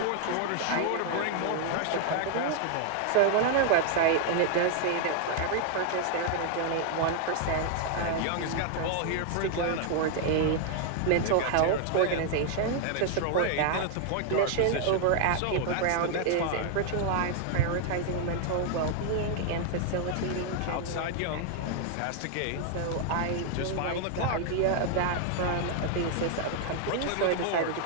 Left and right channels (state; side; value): different; both; correlation 0.00